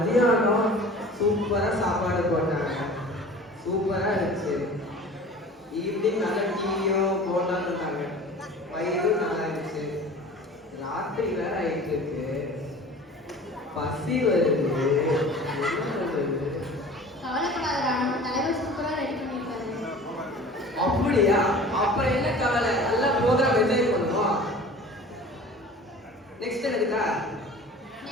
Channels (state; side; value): normal; both; correlation 0.42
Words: சூப்பரா சாப்பாடு போட்டாங்க, சூப்பரா இருந்துச்சு. ஈவினிங் நல்ல டீயும் போட்டான்னு இருந்தாங்க, வயிறும் நல்லா இருந்துச்சு. ராத்திரி வேற ஆயிட்டு இருக்கு, பசி வருது. என்ன பண்றது? கவலைப்படாதடா, நம்ம தலைவர் சூப்பரா ரெடி பண்ணிருக்காரு. அப்படியா? அப்புறம் என்ன கவலை, நல்ல ப்ரோக்ராம் என்ஜாய் பண்ணுவோம். நெக்ஸ்ட் என்னதுக்கா?